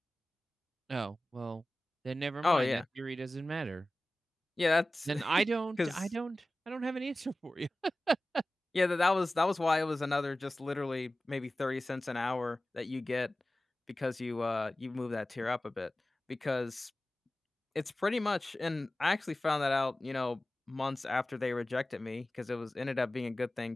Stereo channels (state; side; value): normal; both; correlation 0.96